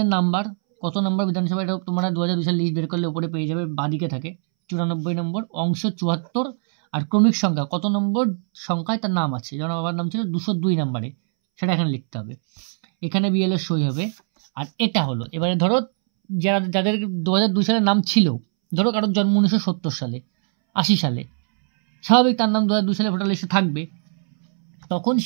নাম্বার, কত নম্বর বিধানসভা, এটা তোমরা 2002 সাল লিস্ট বের করলে উপরে পেয়ে যাবে, বাদিকে থাকে 94 নম্বর, অংশ 74। আর ক্রমিক সংখ্যা, কত নম্বর সংখ্যায় তার নাম আছে, যেমন বাবার নাম ছিল 202 নম্বরে, সেটা এখানে লিখতে হবে। এখানে বিএলও সই হবে। আর এটা হলো, এবারে ধরো যাদের 2002 সালে নাম ছিল, ধরো কারোর জন্ম 1970 সালে, 80 সালে, স্বাভাবিক তার নাম 2002 সালে ভোটার লিস্টে থাকবে, তখন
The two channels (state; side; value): silent; left; 64 dB below the other